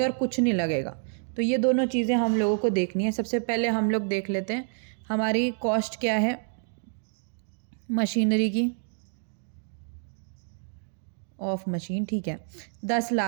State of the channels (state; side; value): silent; left; 59 dB below the other